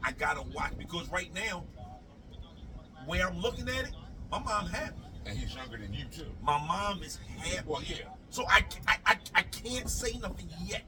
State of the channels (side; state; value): both; identical; correlation 1.00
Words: gotta watch because right now, where I'm looking at it, my mom happy. And he's younger than you too. My mom is happy. Well, yeah. So I can't say nothing yet.